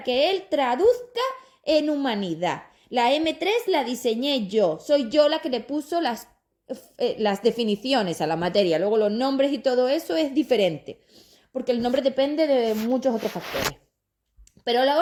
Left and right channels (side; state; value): both; identical; correlation 1.00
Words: que él traduzca en humanidad. La M3 la diseñé yo, soy yo la que le puso las definiciones a la materia, luego los nombres y todo eso es diferente, porque el nombre depende de muchos otros factores. Pero a la